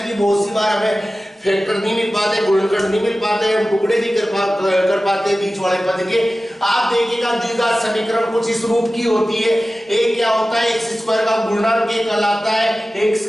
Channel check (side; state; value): both; normal; correlation 0.96